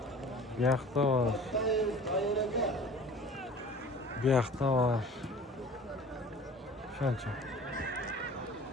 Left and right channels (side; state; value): both; normal; correlation 0.44